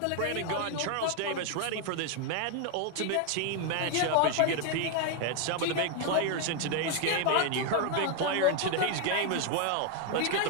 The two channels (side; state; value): both; different; correlation 0.01